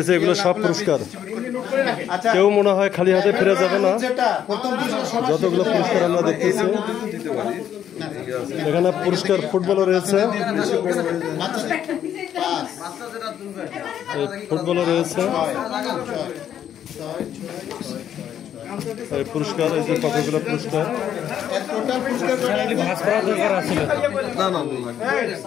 এগুলো সব পুরস্কার। আচ্ছা কেউ মনে হয় খালি হাতে ফিরে যাবে না। যেটা প্রথম পুরস্কার সবার যতগুলো পুরস্কার আমরা দেখতেছি দিতে পারি। এখানে পুরস্কার ফুটবলও রয়েছে, এই ফুটবলও রয়েছে, এই পুরস্কার, এই যে কতগুলো পুরস্কার। টোটাল পুরস্কার না না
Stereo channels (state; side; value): quieter; right; 9.9 dB